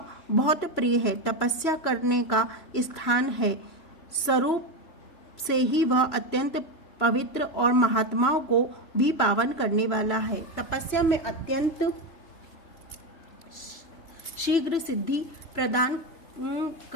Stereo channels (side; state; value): right; late; 3.3 ms